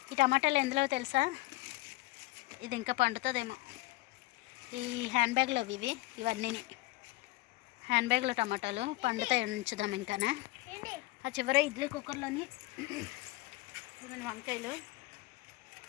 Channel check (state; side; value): quieter; right; 19.7 dB